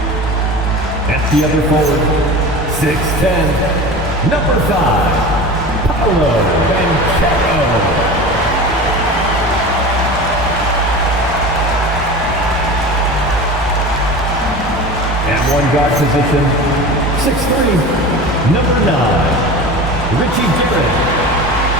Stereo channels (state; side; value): normal; both; correlation 0.33